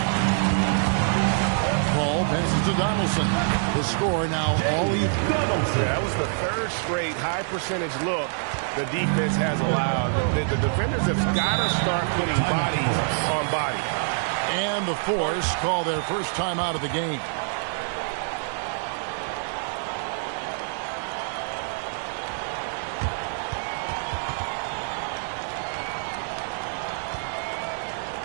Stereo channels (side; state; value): left; silent; digital silence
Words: Ball passes to Donaldson. The score now all even. That was the 3rd straight high percentage look the defense has allowed. The defenders have got to start putting bodies on bodies. And the Force call their first time out of the game.